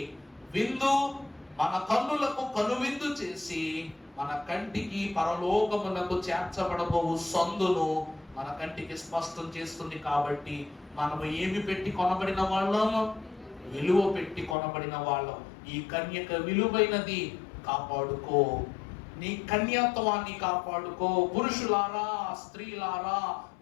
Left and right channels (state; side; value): drops out; right; at 14.6 s